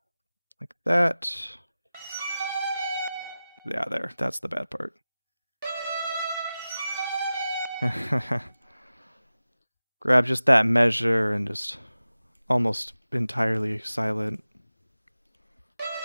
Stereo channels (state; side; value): inverted; both; correlation -0.95